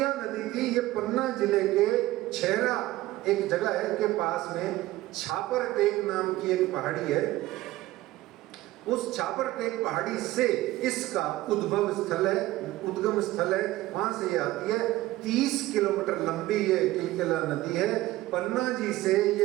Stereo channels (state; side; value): quieter; left; 16.9 dB